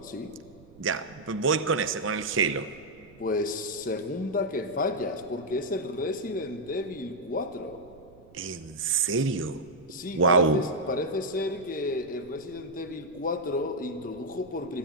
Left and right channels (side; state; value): right; noise; rumble, 24 dB below the sound